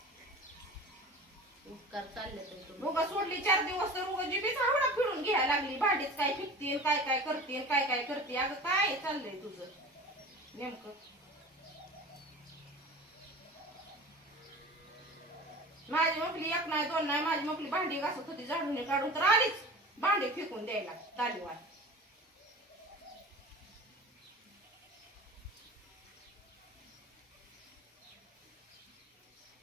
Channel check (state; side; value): normal; both; correlation 0.36